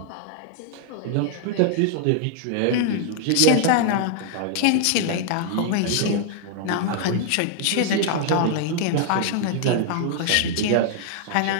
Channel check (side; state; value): both; different; correlation -0.01